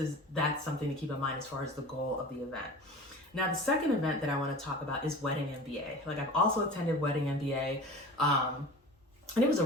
something to keep in mind as far as the goal of the event. Now, the second event that I want to talk about is Wedding MBA. Like, I've also attended Wedding MBA, and it was a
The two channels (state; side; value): normal; both; correlation 0.37